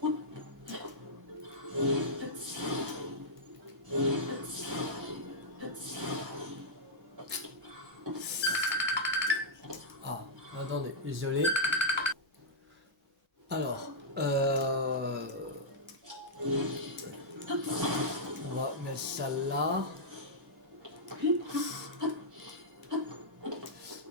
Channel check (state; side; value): normal; both; correlation -0.09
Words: Ah, attendez, désolé. Alors, on va mettre ça là.